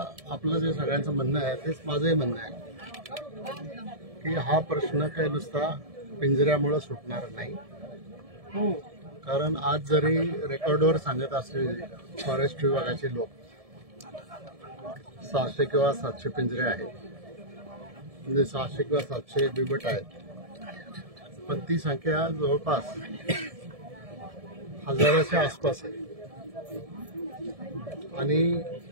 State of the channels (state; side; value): late; left; 1.7 ms